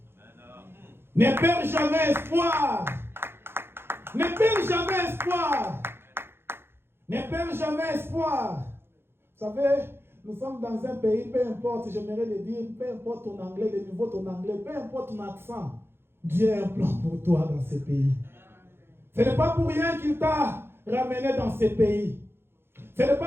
Ne perds jamais espoir. Ne perds jamais espoir. Ne perds jamais espoir. Vous savez, nous sommes dans un pays, peu importe, j'aimerais le dire, peu importe ton anglais, le niveau de ton anglais, peu importe ton accent, Dieu a un plan pour toi dans ce pays. Ce n'est pas pour rien qu'il t'a ramené dans ce pays. Ce n'est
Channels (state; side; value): late; left; 0.11 ms